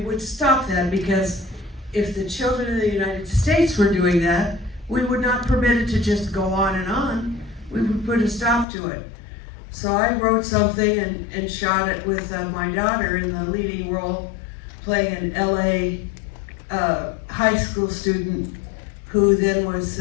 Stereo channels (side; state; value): right; drops out; at 8.7 s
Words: stop that, because if the children in the United States were doing that, we would not permit it to just go on and on. We would put a stop to it. So I wrote something and shot it with my daughter in the leading role, playing an LA high school student who then was